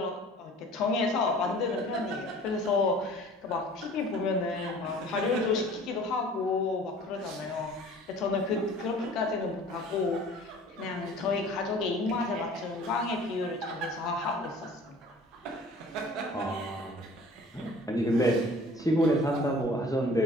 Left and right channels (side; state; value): both; normal; correlation 0.48